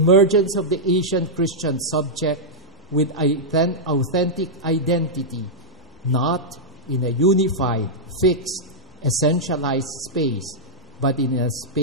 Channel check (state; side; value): normal; both; correlation -0.07